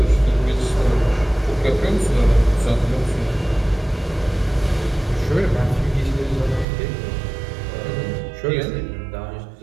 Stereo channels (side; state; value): left; drops out; at 6.7 s